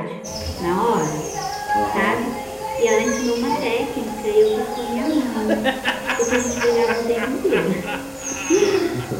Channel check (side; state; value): both; identical; correlation 1.00